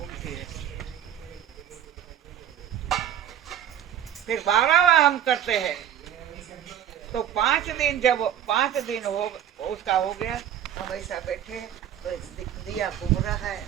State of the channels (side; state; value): left; quieter; 10.2 dB